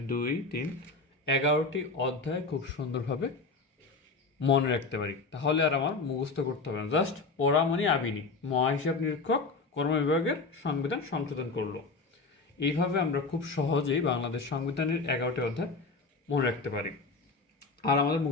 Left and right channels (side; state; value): right; quieter; 3.9 dB